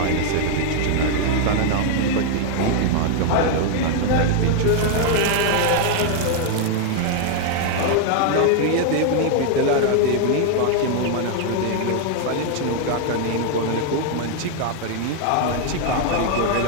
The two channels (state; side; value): different; both; correlation 0.00